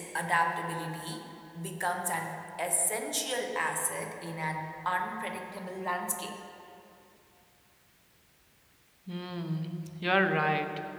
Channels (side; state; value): both; identical; correlation 1.00